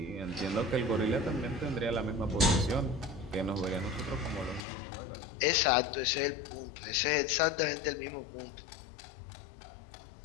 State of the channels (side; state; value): right; drops out; at 4.7 s